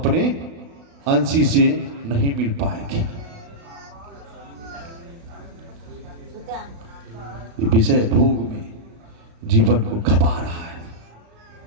अंशी से नहीं मिल पाएंगे। विषय भोग में जीवन को खपा रहा है।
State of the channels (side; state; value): left; late; 36 ms